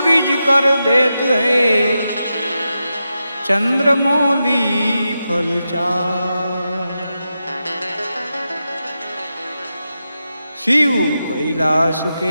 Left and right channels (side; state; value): both; inverted; correlation -0.89